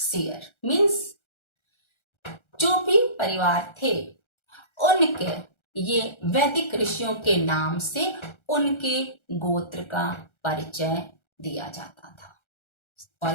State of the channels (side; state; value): right; late; 1.3 ms